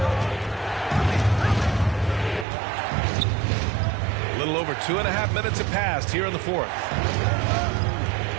A little over 2.5 minutes have passed here in the 4th.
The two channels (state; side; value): drops out; left; at 2.5 s